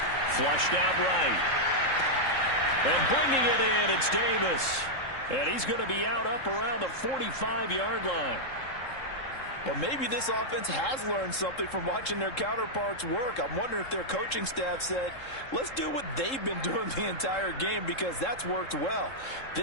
Flushed out right. And bringing it in, it's Davis. And he's going to be out up around the 45-yard line. Well, maybe this offense has learned something from watching their counterparts work. I'm wondering if their coaching staff said, let's do what they've been doing the entire game, because that's worked well.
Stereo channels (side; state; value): right; late; 3.7 ms